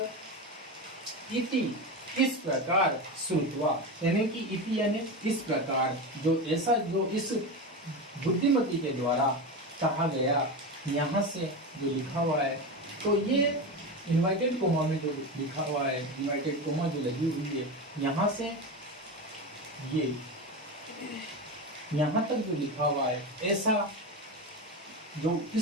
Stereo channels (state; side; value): normal; both; correlation 0.21